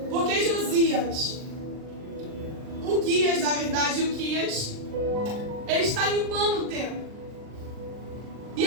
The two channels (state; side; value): late; left; 39 ms